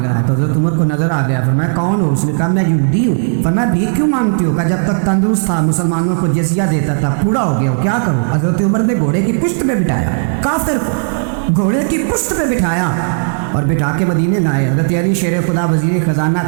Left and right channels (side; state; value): left; silent; digital silence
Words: رہا ہے، تو حضرت عمر کو نظر آ گیا، فرمایا کون ہو؟ اس نے کہا میں یہودی ہوں۔ فرمایا بھیک کیوں مانگتی ہو؟ کہا جب تک تندرست تھا مسلمانوں کو جزیہ دیتا تھا، بوڑھا ہو گیا ہوں کیا کروں؟ حضرت عمر نے گھوڑے کی پشت پہ بٹھایا کافر کو، گھوڑے کی پشت پہ بٹھایا اور بٹھا کے مدینے لائے۔ حضرت علی شیر خدا وزیر خزانہ